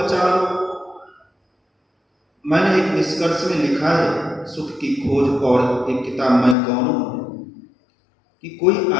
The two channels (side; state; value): right; drops out; at 6.6 s